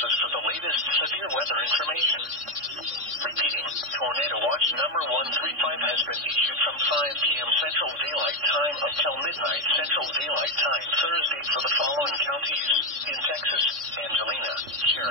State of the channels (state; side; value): late; left; 3.6 ms